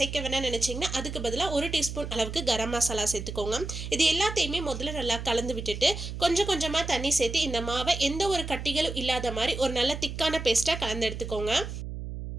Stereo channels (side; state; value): right; noise; hum, 7 dB below the sound